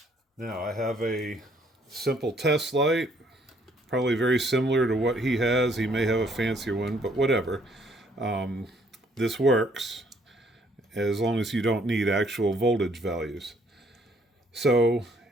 Now, I have a simple test light, probably very similar to what he has. He may have a fancier one, but whatever. This works as long as you don't need actual voltage values. So,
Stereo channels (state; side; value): normal; both; correlation 0.65